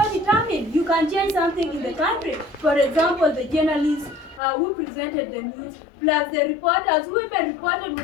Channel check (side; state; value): right; drops out; at 4.4 s